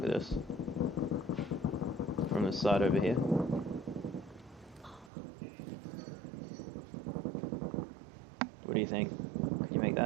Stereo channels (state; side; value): drops out; left; at 5.1 s